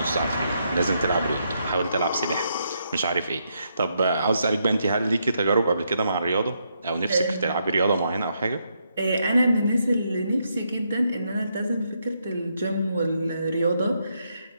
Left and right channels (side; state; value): both; inverted; correlation -0.79